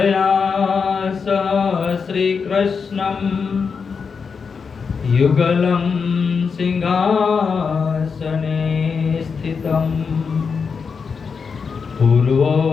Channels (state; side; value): quieter; right; 5.6 dB